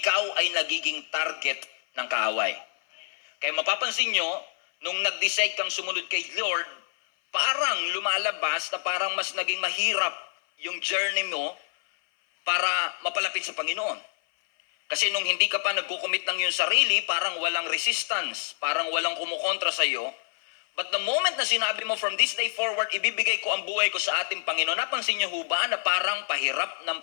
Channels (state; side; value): silent; right; 56 dB below the other